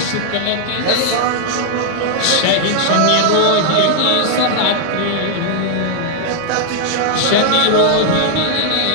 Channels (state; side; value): different; both; correlation 0.00